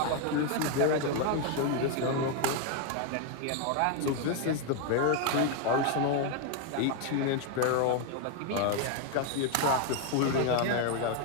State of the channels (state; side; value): different; both; correlation 0.01